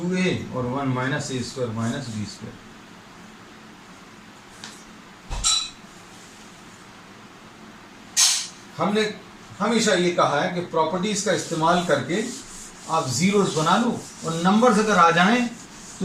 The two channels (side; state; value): both; identical; correlation 1.00